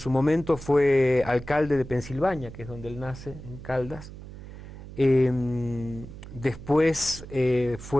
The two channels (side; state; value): right; noise; hum, 14 dB below the sound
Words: momento fue alcalde de Pensilvania, que es donde él nace, en Caldas. Después